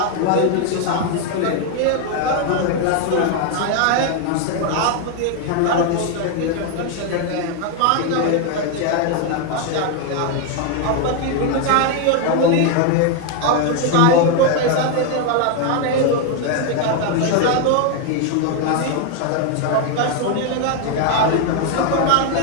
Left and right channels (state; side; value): different; both; correlation 0.01